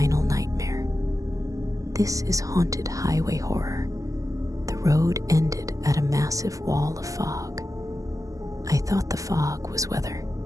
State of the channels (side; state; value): left; late; 0.16 ms